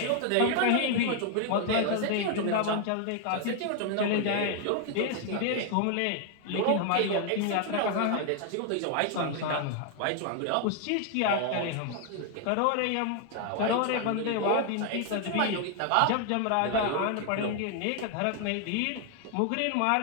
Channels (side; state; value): both; different; correlation 0.00